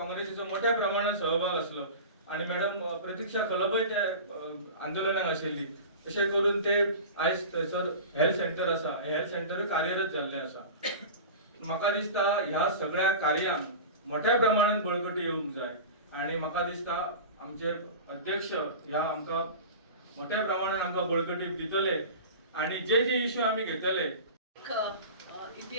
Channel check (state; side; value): inverted; both; correlation -0.33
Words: मोठ्या प्रमाणात सहभाग आसलो आणि मॅडम प्रतीक्षा खलबय त्या आंदोलनाक आशिल्ली. अशें करून ते आयज थंयसर हेल्थ सेंटर आसा हे हेल्थ सेंटर कार्यरत जाल्लें आसा. म्हाका दिसता ह्या सगळ्या कार्यांक मोठ्या प्रमाणात बळकटी येवंक जाय आणि म्हाका दिसता आमचे अध्यक्ष ह्या आमकां मोठ्या प्रमाणात आमकां बळकटी दितले आणि जे इश्यू आमी घेतले.